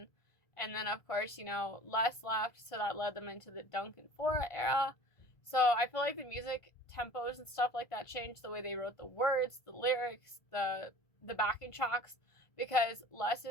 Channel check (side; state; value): right; late; 1.5 ms